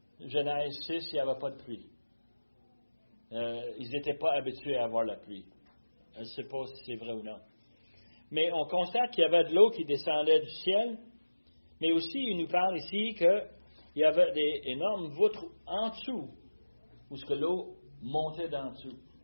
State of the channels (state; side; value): inverted; both; correlation -1.00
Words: Genèse 6, il n'y avait pas de pluie. Ils n'étaient pas habitués à avoir la pluie. Je ne sais pas si c'est vrai ou non. Mais on constate qu'il y avait de l'eau qui descendait du ciel, mais aussi il nous parle ici qu'il y avait des énormes voûtes en dessous, où ce que l'eau montait d'en dessous.